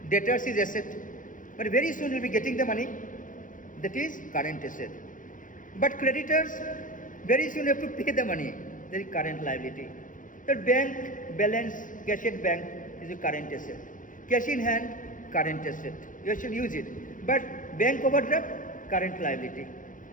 Debtors is asset. But very soon you will be getting the money. That is current asset. But creditors, very soon you have to pay the money. That is current liability. The bank balance, cash at bank is a current asset. Cash in hand, current asset. You should use it. But bank overdraft, current liability.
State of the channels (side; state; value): right; late; 0.38 ms